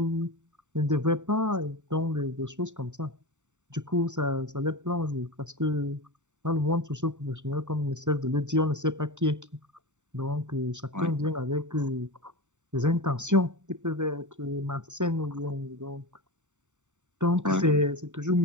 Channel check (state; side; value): late; left; 0.84 ms